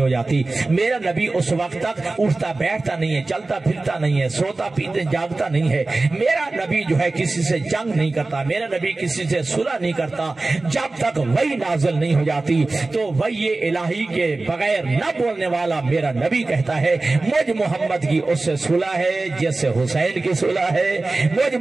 جاتی، میرا نبی اس وقت تک اٹھتا بیٹھتا نہیں ہے، چلتا پھرتا نہیں ہے، سوتا پیتے جاگتا نہیں ہے، میرا نبی جو ہے کسی سے جنگ نہیں کرتا، میرا نبی کسی سے صلح نہیں کرتا جب تک وحی نازل نہیں ہو جاتی۔ تو وحی الہی کے بغیر نہ بولنے والا میرا نبی کہتا ہے مجھ محمد کی اس سے صلح ہے جس سے حسین کی صلح ہے، مجھ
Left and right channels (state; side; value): quieter; left; 3.3 dB